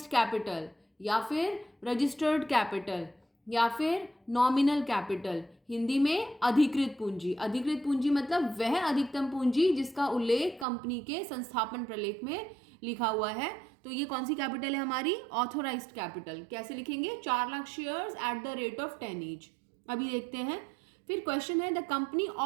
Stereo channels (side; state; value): left; drops out; at 10.7 s